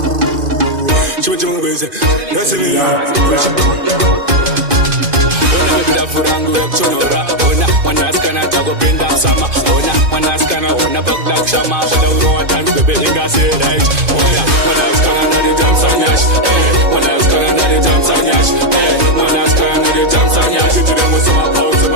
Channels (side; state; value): left; late; 2.5 ms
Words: That's me. Ona baby da furangu ya kuchonora. Ona mwanaskana tago pinda msama. Ona mwanaskana ona bagdak shama. Pada uroa dance baby inga say right. Ona mwanaskana na the jump on yash. Mwanaskana na the jump on yash. Mwanaskana na the jump on yash. She didn't want some pause so